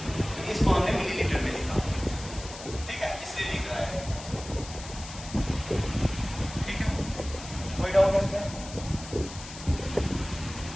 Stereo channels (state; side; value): noise; left; hiss, 13 dB below the sound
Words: तो इसको हमने मिलीलीटर में लिखा, ठीक है, इसलिए लिख रहा है, ठीक है। कोई डाउट है इसमें।